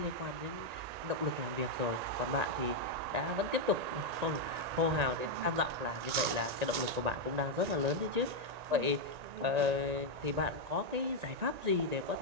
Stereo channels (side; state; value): left; late; 1.9 ms